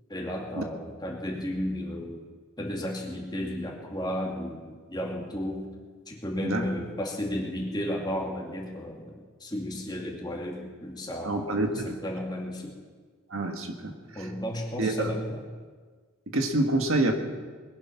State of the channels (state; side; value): normal; both; correlation 0.56